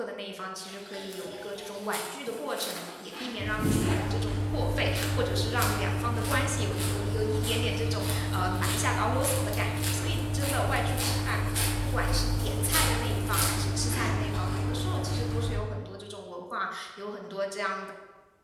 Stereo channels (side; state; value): both; identical; correlation 1.00